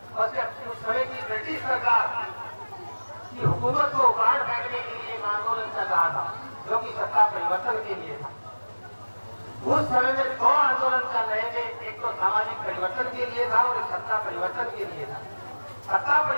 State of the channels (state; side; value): inverted; both; correlation -1.00